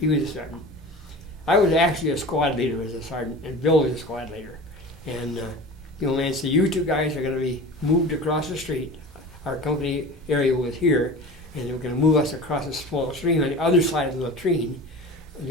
was a sergeant. I was actually a squad leader as a sergeant, and Bill was a squad leader. And the old man said, you two guys are going to be moved across the street. Our company area was here, and they were going to move us across a small stream on the other side of the latrine.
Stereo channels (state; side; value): normal; both; correlation 0.36